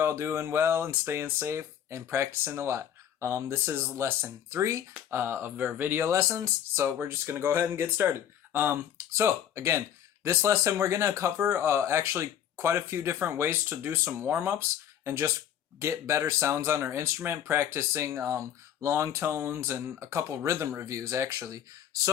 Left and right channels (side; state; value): right; quieter; 9.9 dB